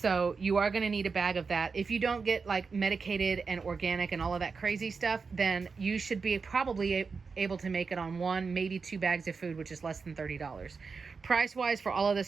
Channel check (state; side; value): quieter; left; 5.0 dB